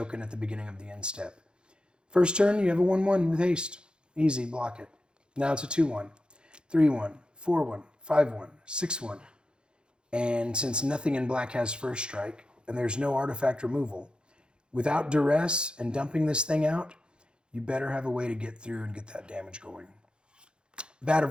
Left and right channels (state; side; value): late; left; 0.051 ms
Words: at the beginning of the end step. First turn, you have a 1/1 with haste. Easy, block it. Now it's a 2/1, 3/1, 4/1, 5/1, 6/1. And since nothing in black has first strike, and there's no artifact removal, without duress and dumping this thing out, you better have a way to get through and get that damage going. Vat